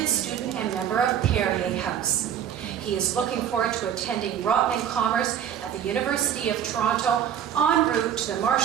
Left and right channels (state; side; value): quieter; left; 9.4 dB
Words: student and member of Perrier House. He is looking forward to attending Rotman Commerce at the University of Toronto en route to the